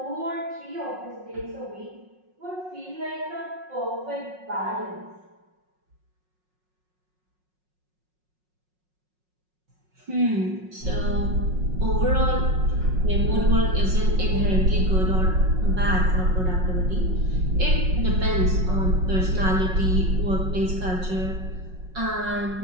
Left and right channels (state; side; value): late; left; 5.5 ms